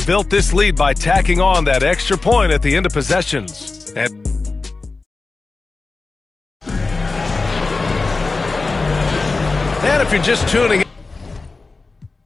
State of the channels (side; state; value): right; quieter; 3.8 dB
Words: this lead by tacking on that extra point at the end of possessions. And if you're just tuning